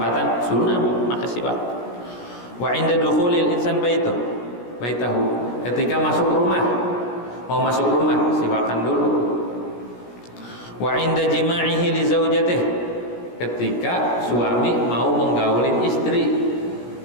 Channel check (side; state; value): right; late; 17 ms